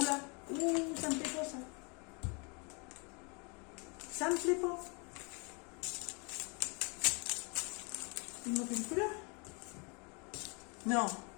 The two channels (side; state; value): right; quieter; 32.4 dB